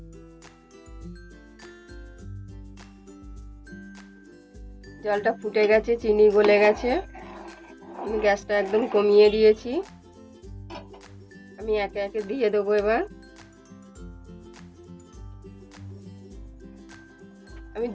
জলটা ফুটে গেছে, চিনি গলে গেছে। আমি গ্যাসটা একদম কমিয়ে দিয়েছি। আমি একে একে দিয়ে দেবো এবার। আমি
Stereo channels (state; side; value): identical; both; correlation 1.00